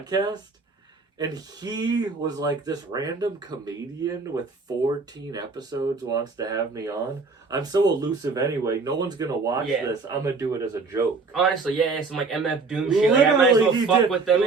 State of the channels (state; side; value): quieter; left; 4.2 dB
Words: And he was like, this random comedian with 14 episodes wants to have me on. I'm so elusive anyway. No one's going to watch this. I'm going to do it as a joke. Honestly, some like MF Doom shit. Like, I might as well fuck with them